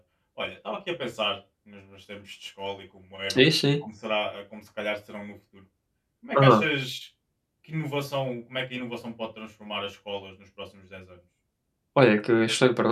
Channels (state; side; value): identical; both; correlation 1.00